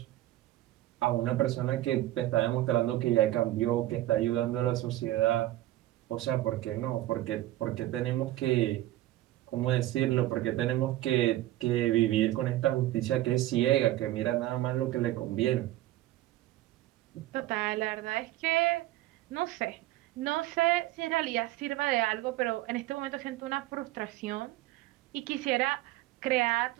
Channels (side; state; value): left; quieter; 15.5 dB